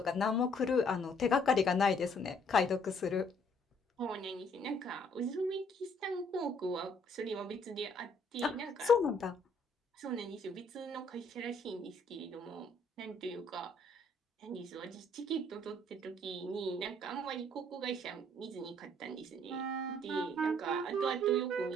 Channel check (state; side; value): normal; both; correlation 0.64